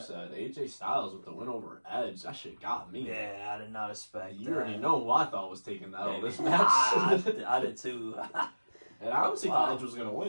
AJ Styles with the win over Edge, that shit got me. Yeah, I did not expect that. You already know who I thought was taking that over this match. I did too. And I honestly thought Edge was going to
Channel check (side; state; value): both; inverted; correlation -1.00